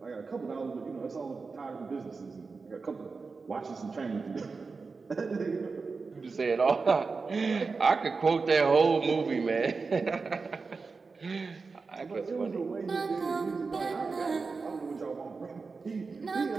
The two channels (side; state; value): left; quieter; 4.5 dB